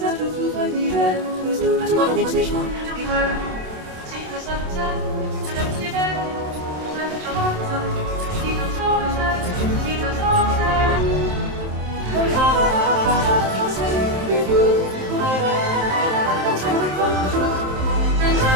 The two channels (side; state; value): left; late; 27 ms